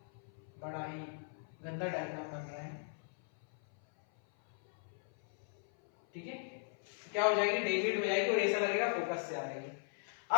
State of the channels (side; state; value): right; silent; 52 dB below the other